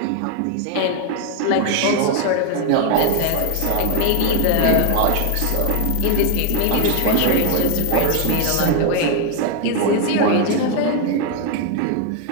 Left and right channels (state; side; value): different; both; correlation 0.01